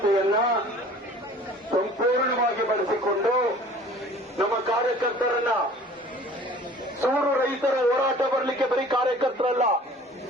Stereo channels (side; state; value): both; normal; correlation 0.48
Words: ಸಂಪೂರ್ಣವಾಗಿ ಬಳಸಿಕೊಂಡು ನಮ್ಮ ಕಾರ್ಯಕರ್ತರನ್ನ ಸೂರು ರೈತರ ಹೋರಾಟ ಬರಲಿಕ್ಕೆ ಬರೀ ಕಾರ್ಯಕರ್ತರಲ್ಲ,